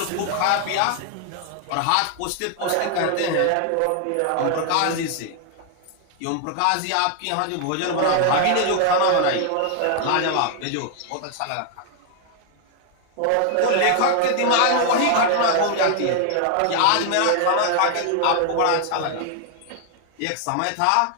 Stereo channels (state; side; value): different; both; correlation 0.00